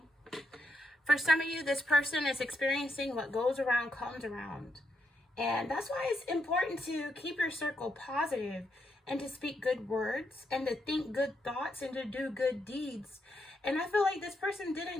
For some of you, this person is experiencing what goes around comes around. And that's why it's important to keep your circle positive and to speak good words and to think good thoughts and to do good deeds. And I feel like this person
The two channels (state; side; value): normal; both; correlation 0.80